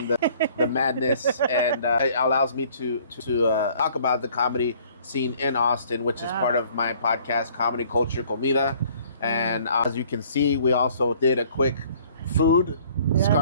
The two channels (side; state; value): both; inverted; correlation -0.57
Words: the madness, and it allows me to talk about the comedy scene in Austin, which is part of my podcast, Comedy Culture Comida. And as you can see, we also did a quick food,